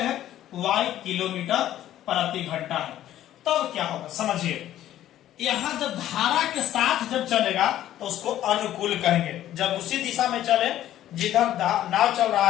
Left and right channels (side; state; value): right; quieter; 12.6 dB